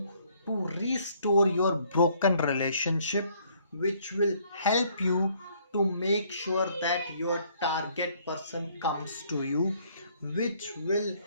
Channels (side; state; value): both; inverted; correlation -0.64